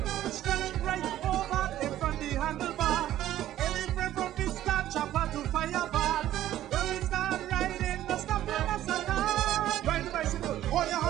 Stretch right over in front the handlebar. Any friend from Vista, chopper to fireball. When we start riding, no stop them us at all. Ride the bicycle, hold your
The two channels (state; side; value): quieter; left; 13.1 dB